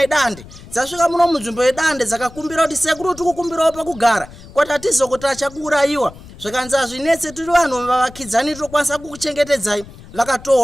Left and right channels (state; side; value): noise; left; rumble, 19 dB below the sound